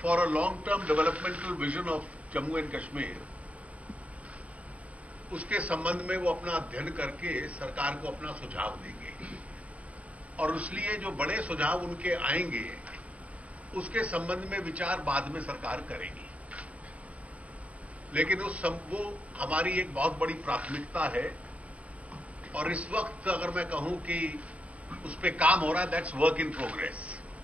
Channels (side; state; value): left; late; 0.067 ms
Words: for a long term developmental vision of Jammu and Kashmir, उसके संबंध में वो अपना अध्ययन करके सरकार को अपना सुझाव देंगे और इसलिए जो बड़े सुझाव उनके आएंगे उसके संबंध में विचार बाद में सरकार करेगी। लेकिन वो हमारी एक बहुत बड़ी प्राथमिकता है और इस वक्त अगर मैं कहूं कि उस पर काम हो रहा है, दैट्स वर्क इन प्रोग्रेस।